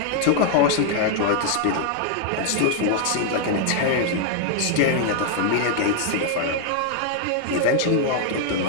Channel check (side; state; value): both; different; correlation 0.00